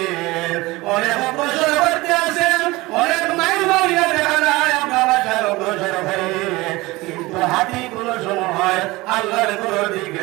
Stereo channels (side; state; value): left; quieter; 20.9 dB